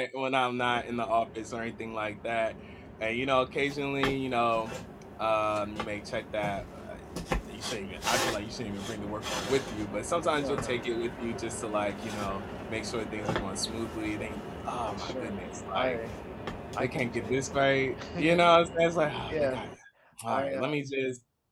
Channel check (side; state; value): both; identical; correlation 1.00